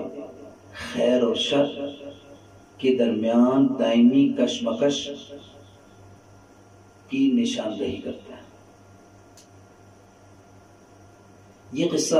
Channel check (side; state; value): both; identical; correlation 1.00